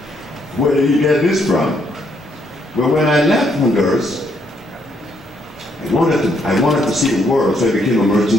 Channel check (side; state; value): both; normal; correlation 0.72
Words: Where did he get this from? Well, when I left Honduras, I wanted to see the world, so I became a